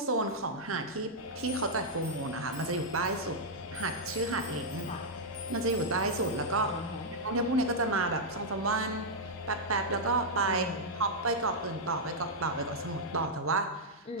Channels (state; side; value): normal; both; correlation -0.06